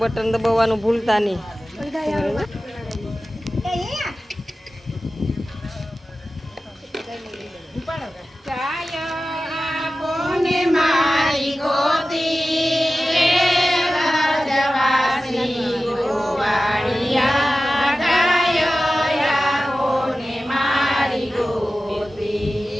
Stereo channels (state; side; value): normal; both; correlation 0.95